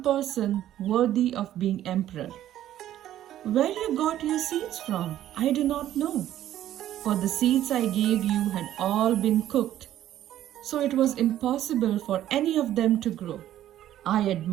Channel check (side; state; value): left; quieter; 12.4 dB